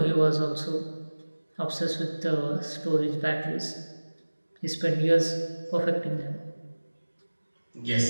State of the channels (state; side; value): inverted; both; correlation -1.00